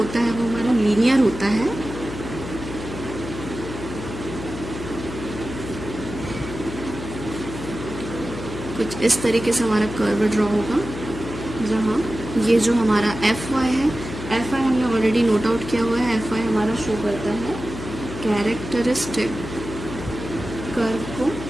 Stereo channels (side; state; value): left; noise; hum, 9 dB below the sound